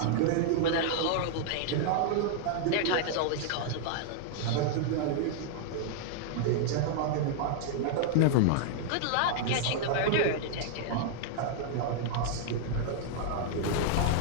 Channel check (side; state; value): both; different; correlation 0.00